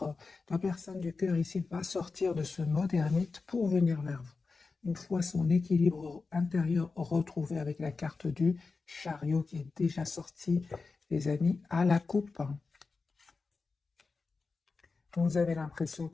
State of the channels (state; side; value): quieter; right; 4.2 dB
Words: la personne du cœur ici, va sortir de ce mode ermite pour venir vers vous. Une fois son équilibre intérieur retrouvé avec la carte du chariot qui est déjà sortie, les amis, à la coupe. Vous avez l'impression